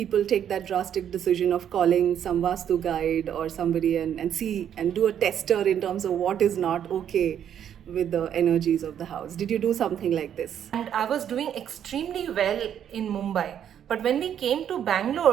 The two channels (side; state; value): left; quieter; 9.5 dB